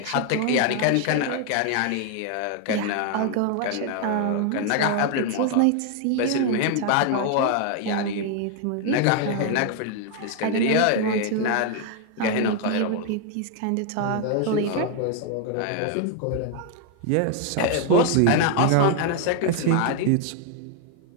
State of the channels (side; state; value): both; different; correlation 0.01